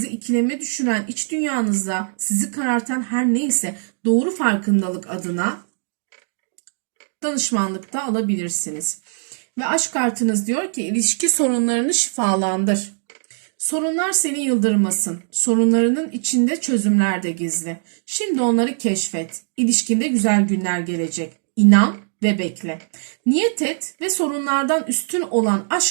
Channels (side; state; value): left; silent; digital silence